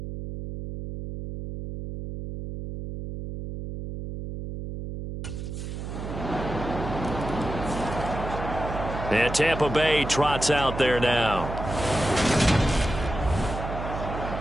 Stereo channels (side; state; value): right; noise; hum, 7 dB below the sound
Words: And Tampa Bay trots out there now.